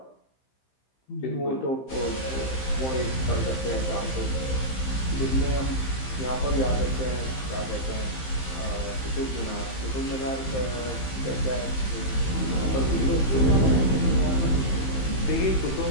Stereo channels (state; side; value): late; right; 15 ms